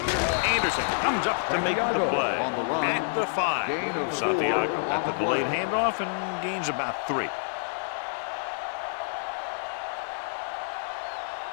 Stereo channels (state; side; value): silent; right; digital silence